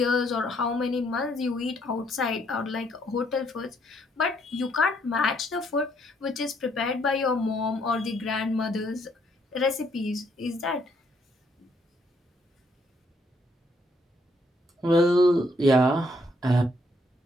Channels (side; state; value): both; normal; correlation 0.70